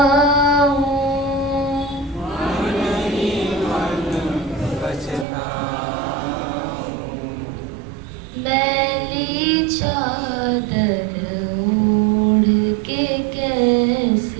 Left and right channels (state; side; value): drops out; left; at 5.2 s